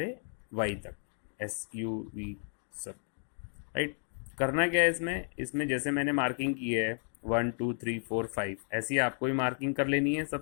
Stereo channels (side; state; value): right; silent; 56 dB below the other